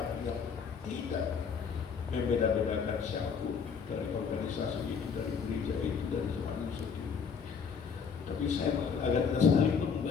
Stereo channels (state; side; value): quieter; right; 6.1 dB